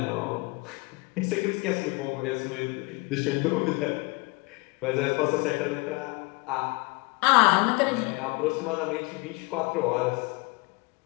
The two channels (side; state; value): right; quieter; 26.7 dB